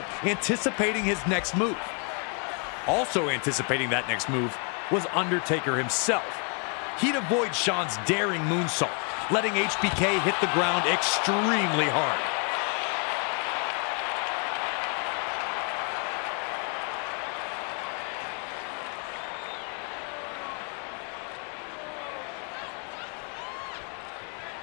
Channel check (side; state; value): right; quieter; 37.0 dB